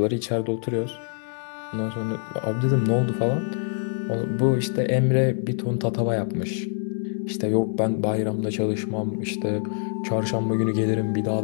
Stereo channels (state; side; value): silent; right; 62 dB below the other